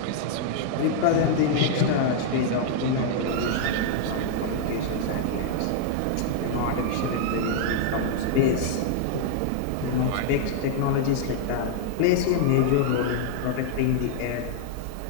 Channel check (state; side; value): different; both; correlation -0.01